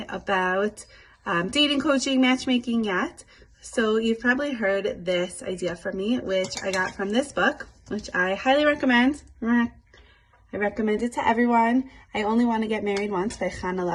about dating coaching, matchmaking yet, so you've probably heard this idea from me, which I got from this book, which I highly recommend. I recommend it to everyone. I Only Want to Get Married Once by Chana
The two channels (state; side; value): identical; both; correlation 1.00